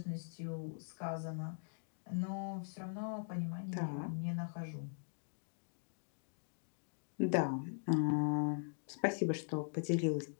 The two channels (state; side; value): silent; right; digital silence